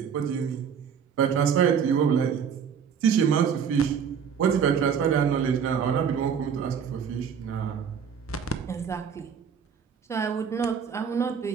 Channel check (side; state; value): left; quieter; 7.2 dB